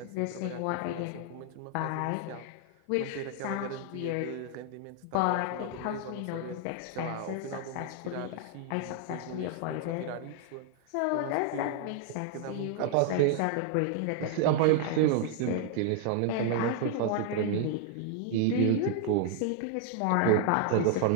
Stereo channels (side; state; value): both; different; correlation 0.00